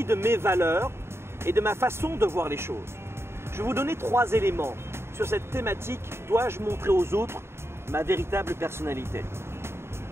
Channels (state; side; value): late; left; 0.12 ms